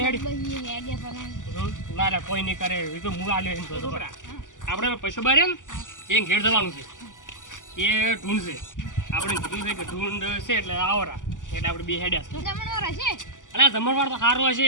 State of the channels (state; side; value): late; right; 0.87 ms